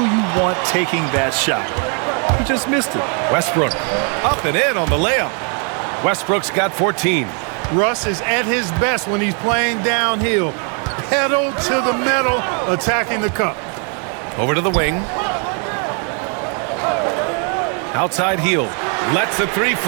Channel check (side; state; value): left; quieter; 39.3 dB